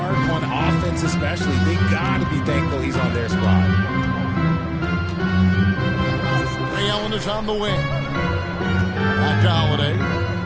on offense especially. They got to be thankful he's on their squad. Ray Allen is on the wing. Back to Holiday.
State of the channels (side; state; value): both; identical; correlation 1.00